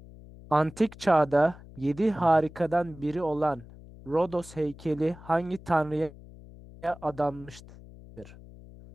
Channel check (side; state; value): left; noise; hum, 19 dB below the sound